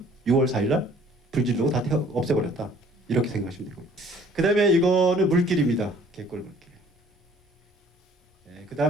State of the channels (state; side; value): normal; both; correlation 0.55